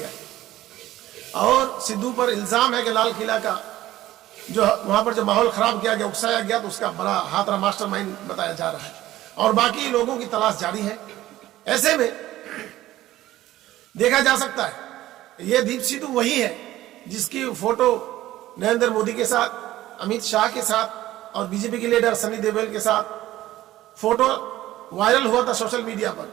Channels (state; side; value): quieter; left; 15.0 dB